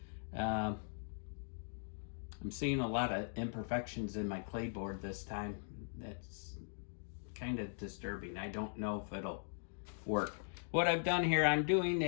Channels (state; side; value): silent; right; digital silence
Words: I'm seeing a lot of imperfections in my Claybord this time. That's kind of disturbing. I don't know if it'll work. What I've done here, I'm doing